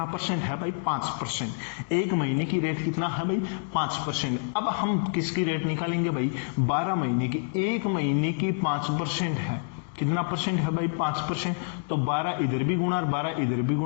परसेंट है भाई, 5%। 1 महीने की रेट कितना है भाई, 5%। अब हम किसकी रेट निकालेंगे भाई, 12 महीने की। 1 महीने की 5% है, कितना परसेंट है भाई, 5%। तो 12 इधर भी गुणा और 12 इधर भी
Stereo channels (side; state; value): right; silent; digital silence